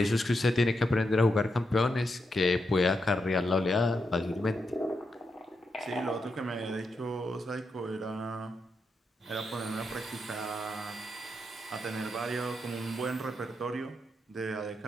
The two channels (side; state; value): both; normal; correlation 0.84